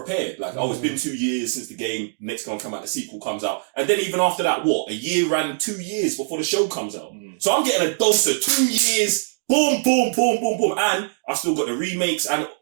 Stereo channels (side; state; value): left; silent; digital silence